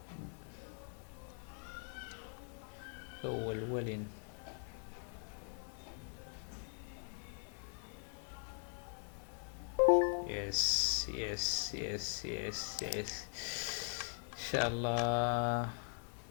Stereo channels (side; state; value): right; silent; 50 dB below the other